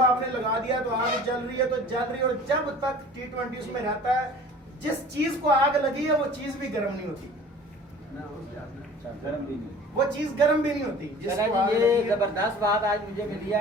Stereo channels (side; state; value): both; normal; correlation 0.45